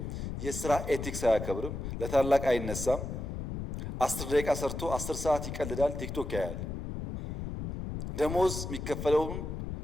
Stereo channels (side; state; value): left; noise; rumble, 6 dB below the sound